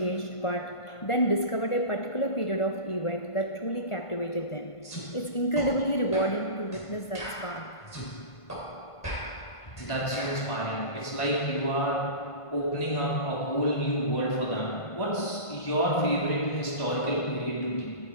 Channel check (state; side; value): late; right; 1.5 ms